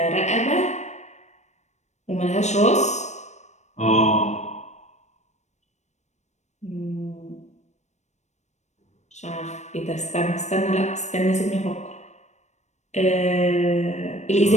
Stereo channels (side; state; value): right; late; 0.34 ms